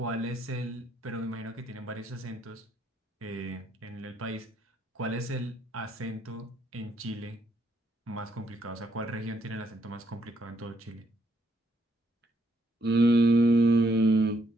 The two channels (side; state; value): both; normal; correlation 0.73